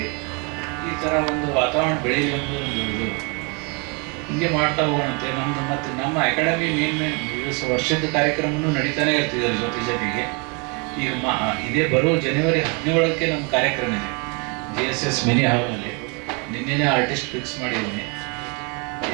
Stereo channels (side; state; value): left; quieter; 32.9 dB